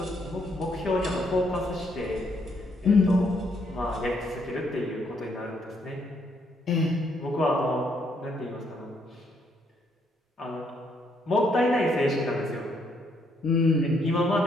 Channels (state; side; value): normal; both; correlation 0.72